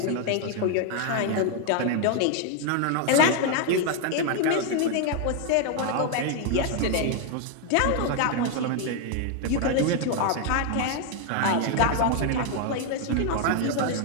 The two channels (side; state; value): both; different; correlation 0.00